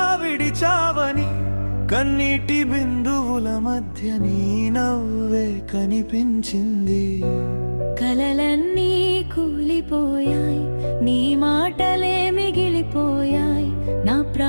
విడిచావని. కన్నీటి బిందువుల మధ్య నీ నవ్వే కనిపించింది. కలలన్నీ కూలిపోయాయి, నీ మాటలే మిగిలిపోయాయి. నా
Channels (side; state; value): both; inverted; correlation -1.00